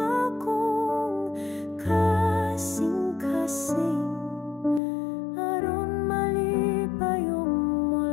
akong kasing-kasing, aron malipayong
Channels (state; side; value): drops out; right; at 4.8 s